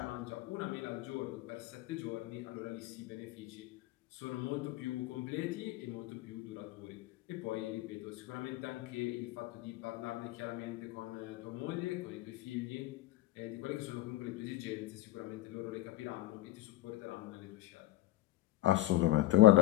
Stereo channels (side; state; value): right; quieter; 16.3 dB